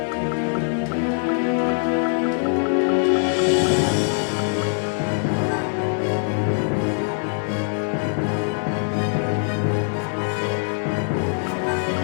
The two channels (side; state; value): right; silent; 63 dB below the other